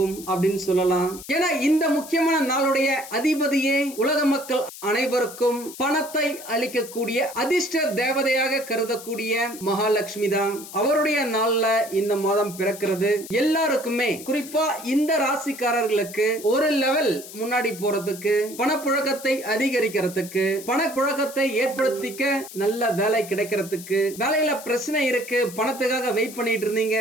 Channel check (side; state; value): left; noise; hiss, 14 dB below the sound